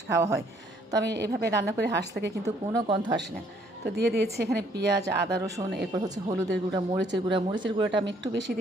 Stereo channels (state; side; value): normal; both; correlation 0.64